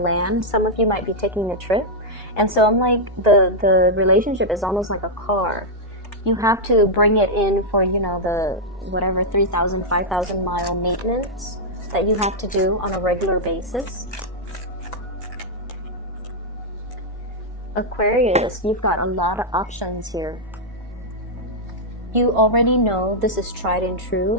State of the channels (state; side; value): normal; both; correlation -0.05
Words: Some of you might be taking a trip. And so I'm like, the relationship is almost like a car. You have to bring it in for, you know, the whatever 3,000, 5,000 mile maintenance that you have to do on a regular basis. Aquarius, you've got a lot of options here. You already know this is tried and true,